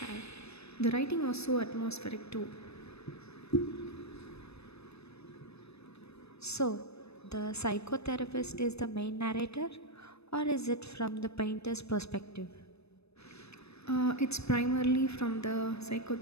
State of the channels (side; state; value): right; late; 0.79 ms